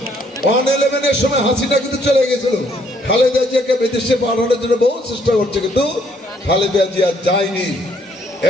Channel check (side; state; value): both; normal; correlation 0.67